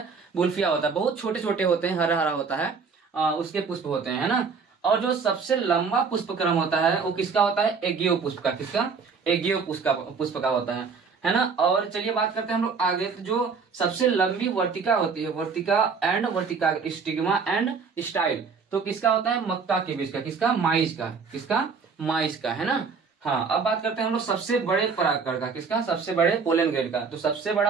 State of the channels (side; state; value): left; quieter; 5.3 dB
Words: बुल्फिया होता है। बहुत छोटे छोटे होते हैं, हरा हरा होता है, उसके पुष्प होते हैं, है ना। और जो सबसे लंबा पुष्पक्रम होता है वो किसका होता है? एगियो पुष्प का। किसका? एगियो पुष्प का होता है ना। और चलिए बात करते हैं हम लोग आगे। तो जो सबसे लंबी वर्तिका होती है, वर्तिका स्टिग्मा एंड स्टाइल, तो किसका होता है? मक्का के बीज का। किसका? माइज का। किसका? माइज का, है ना। हाँ, अब बात करते हैं हम लोग सबसे बड़े परागकण का। किसका? सबसे बड़े पोलन ग्रेन का। तो सबसे